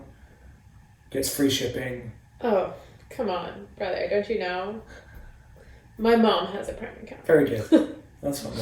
gets free shipping. Oh, come on, brother! Don't you know? My mom has a Prime account. Very good. That's what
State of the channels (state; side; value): identical; both; correlation 1.00